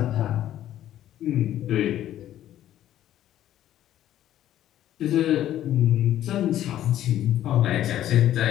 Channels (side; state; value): right; quieter; 12.3 dB